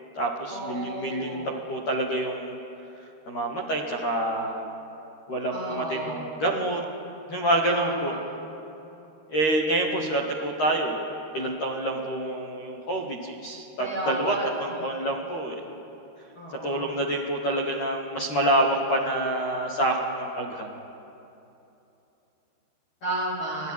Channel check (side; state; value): right; late; 13 ms